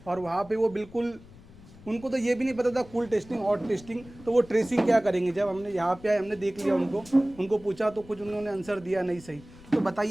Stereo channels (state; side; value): noise; left; rumble, 21 dB below the sound